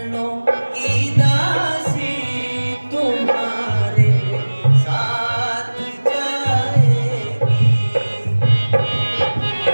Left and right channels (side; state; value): both; inverted; correlation -1.00